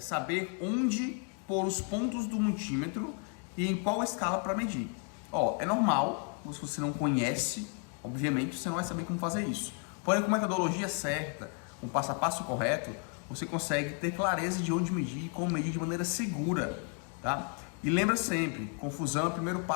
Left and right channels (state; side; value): quieter; right; 39.6 dB